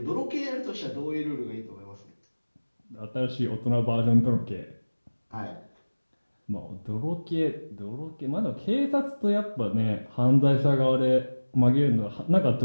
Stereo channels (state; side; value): inverted; both; correlation -1.00